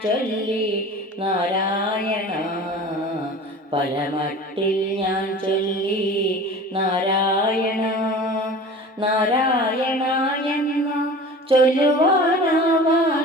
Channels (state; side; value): normal; both; correlation 0.39